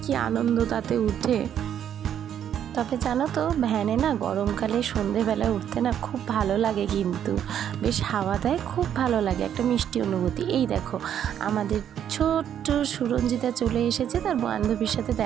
কি আনন্দ তাতে উঠে। তবে জানো তো ভ্যানে না গরমকালে সন্ধেবেলায় উঠতে না খুব ভালো লাগে, কিন্তু বেশ হাওয়া দেয়, খুব ভালো লাগে, একটা মিষ্টি অনুভূতি। এই দেখো আমাদের ছোট্ট সুরঞ্জিতা চলে এসেছে তার বান্ধবীর সাথে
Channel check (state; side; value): quieter; left; 9.6 dB